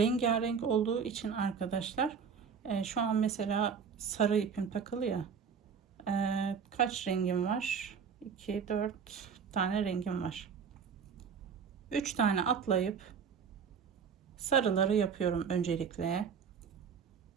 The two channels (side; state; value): left; quieter; 6.5 dB